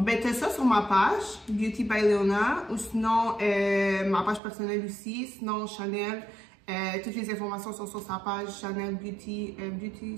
t'as ça sur ma page, Beauty by Leona, ou sinon, ma page personnelle aussi, sinon Chanel. Toutes les informations sont sur sa page, Chanel Beauty,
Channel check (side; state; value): left; drops out; at 4.4 s